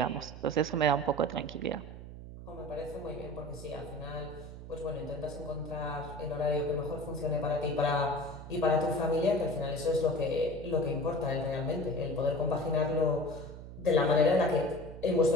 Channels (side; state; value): right; noise; hum, 12 dB below the sound